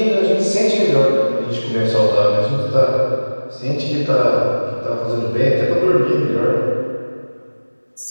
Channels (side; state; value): both; inverted; correlation -1.00